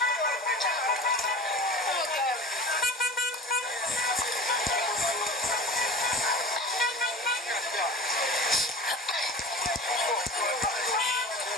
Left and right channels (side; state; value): both; normal; correlation 0.36